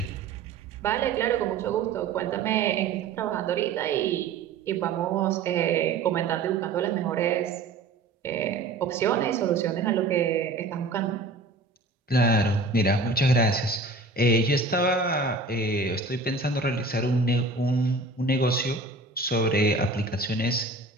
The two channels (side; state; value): left; quieter; 3.5 dB